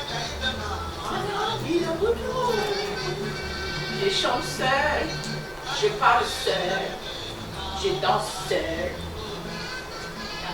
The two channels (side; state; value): both; identical; correlation 1.00